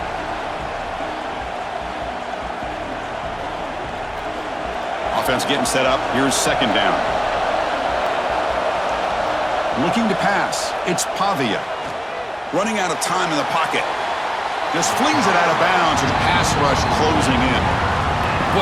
Offense getting set up. Here's second down. Looking to pass. It's Pavia. Running out of time in the pocket. Just flings it out of bounds with the pass rush closing in.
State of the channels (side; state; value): both; identical; correlation 1.00